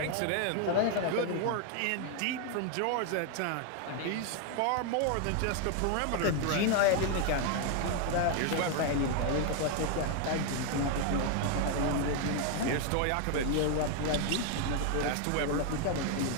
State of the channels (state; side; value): different; both; correlation 0.00